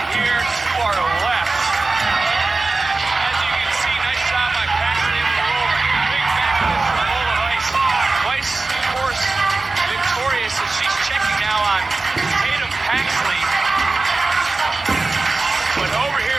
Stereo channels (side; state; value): left; quieter; 3.5 dB